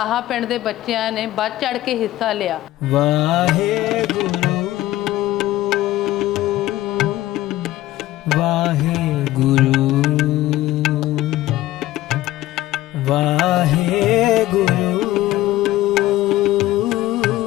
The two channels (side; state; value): right; quieter; 15.5 dB